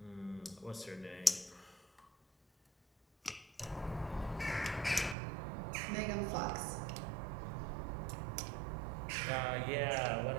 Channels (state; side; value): drops out; left; at 5.2 s